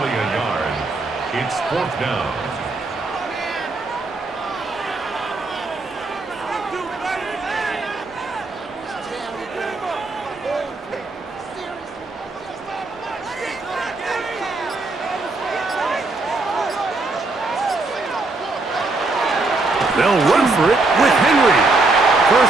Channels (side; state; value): left; quieter; 3.3 dB